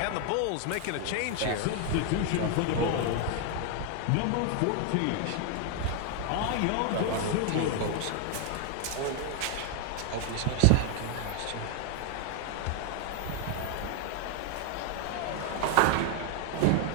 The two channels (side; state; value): both; different; correlation 0.00